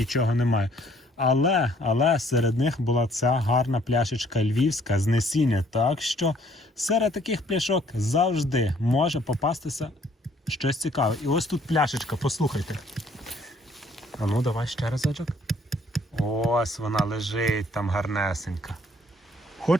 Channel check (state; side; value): normal; both; correlation 0.62